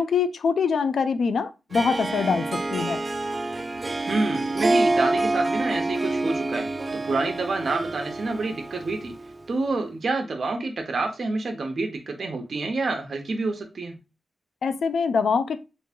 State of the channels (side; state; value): both; normal; correlation 0.87